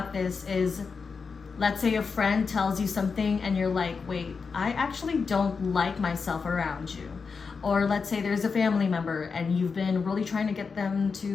this is, let's say a friend tells you something and you're like, wait, I actually don't like myself around you. Or let's say there's a family member and you've been really trying to get them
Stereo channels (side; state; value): right; quieter; 5.2 dB